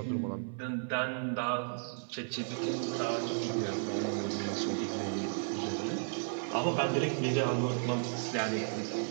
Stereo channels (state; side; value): silent; left; 55 dB below the other